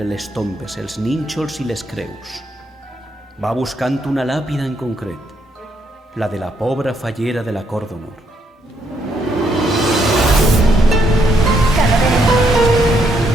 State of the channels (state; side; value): normal; both; correlation 0.74